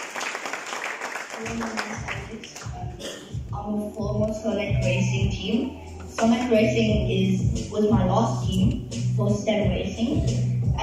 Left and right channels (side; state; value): both; identical; correlation 1.00